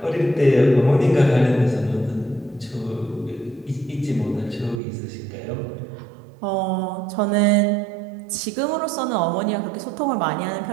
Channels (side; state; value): left; drops out; at 4.8 s